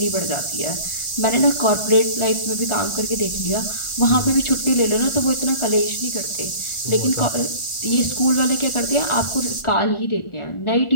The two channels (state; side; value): late; right; 1.4 ms